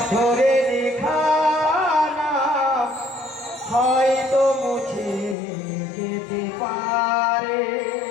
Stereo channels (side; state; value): right; drops out; at 5.4 s